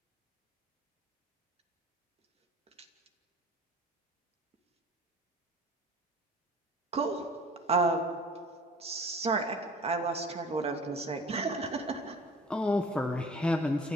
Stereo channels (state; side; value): normal; both; correlation 0.45